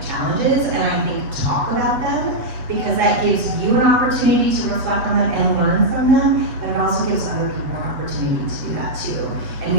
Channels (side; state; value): left; late; 7.5 ms